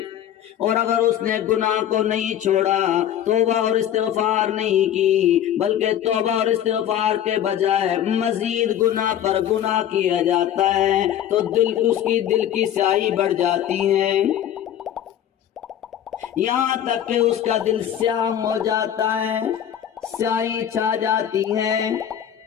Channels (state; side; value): quieter; right; 10.4 dB